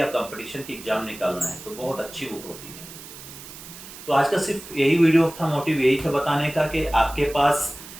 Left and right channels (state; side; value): noise; right; hiss, 15 dB below the sound